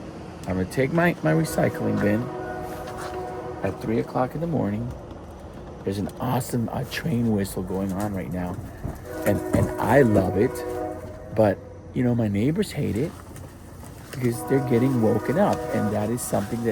I'm gonna take my recycling bin at 3 o'clock in the morning. There's an awesome train whistle going on right now, and I love it. But my neighbors hate it because they're getting woken up, and that is something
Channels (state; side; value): identical; both; correlation 1.00